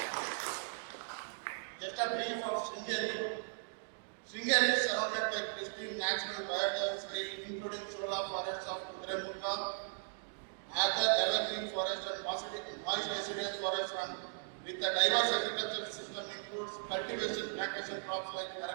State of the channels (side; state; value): left; silent; digital silence